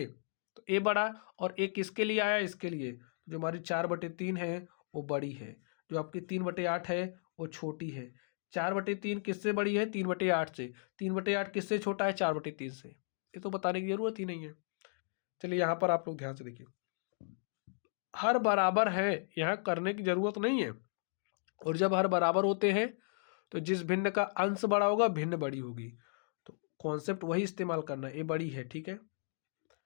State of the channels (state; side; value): silent; right; digital silence